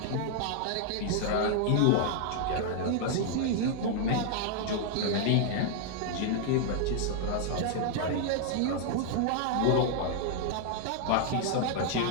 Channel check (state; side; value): different; both; correlation 0.00